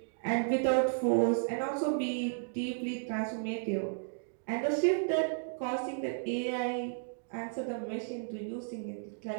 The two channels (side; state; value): left; silent; digital silence